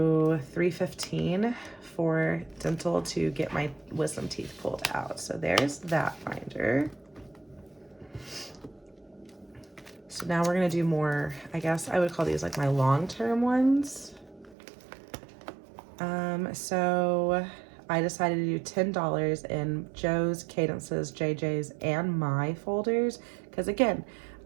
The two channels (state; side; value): drops out; left; at 14.6 s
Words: 315 for dental to get my wisdom teeth pulled out. So there's that binder. So now we're gonna do more, I guess I would call these like my long-term ones. So I decided to do $10 in Joe's, Cadence's, JJ's, and my folders, because again,